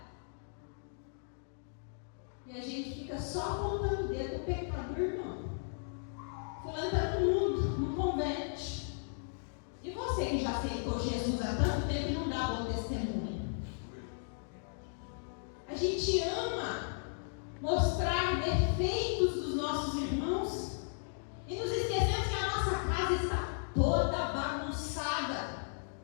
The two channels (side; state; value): right; silent; digital silence